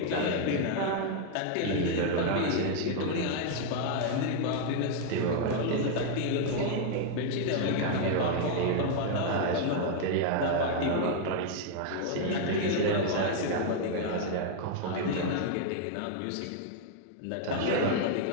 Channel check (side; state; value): both; different; correlation 0.00